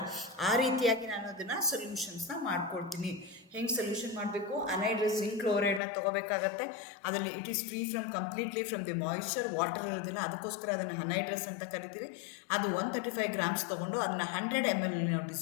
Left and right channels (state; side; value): drops out; right; at 5.8 s